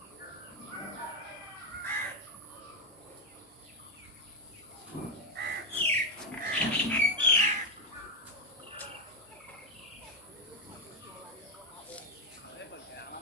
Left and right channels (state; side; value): normal; both; correlation 0.05